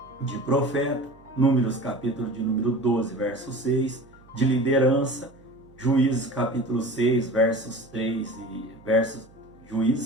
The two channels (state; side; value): noise; right; hum, 26 dB below the sound